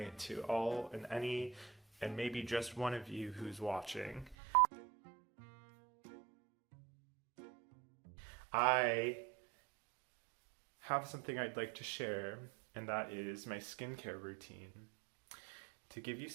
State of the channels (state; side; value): drops out; left; at 4.4 s